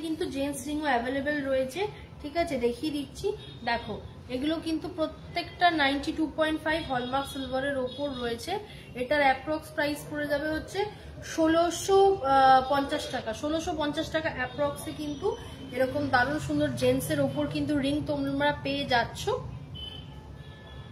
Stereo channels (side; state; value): both; identical; correlation 1.00